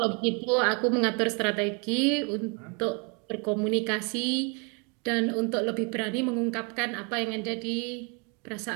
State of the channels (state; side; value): quieter; left; 34.0 dB